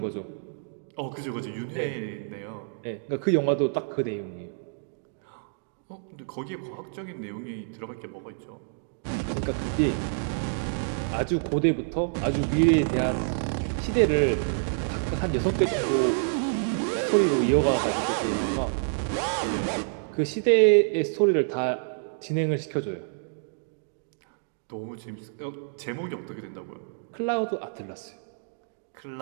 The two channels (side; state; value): left; silent; digital silence